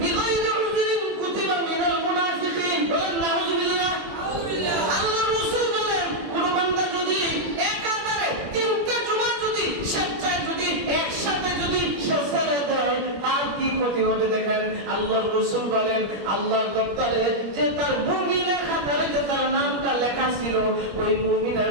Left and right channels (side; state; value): left; late; 21 ms